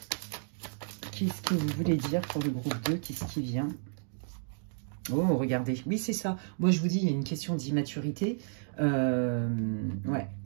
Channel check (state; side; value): silent; left; digital silence